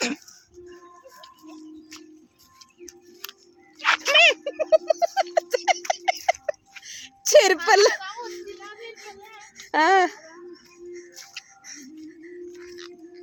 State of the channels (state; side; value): identical; both; correlation 1.00